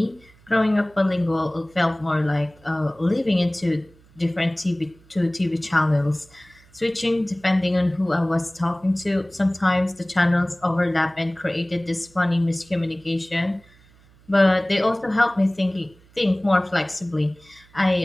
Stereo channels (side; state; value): right; noise; hum, 28 dB below the sound